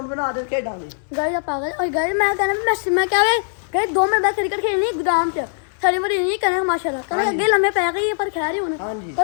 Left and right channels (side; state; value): right; silent; digital silence